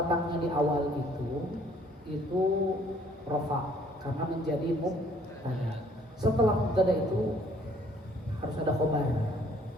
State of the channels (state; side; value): normal; both; correlation 0.60